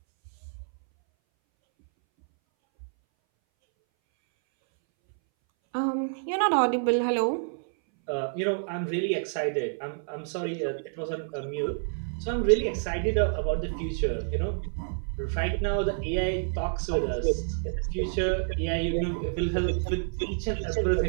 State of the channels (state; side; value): silent; left; 59 dB below the other